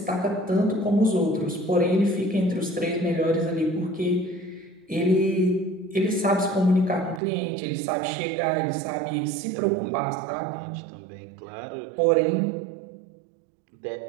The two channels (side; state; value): left; drops out; at 7.2 s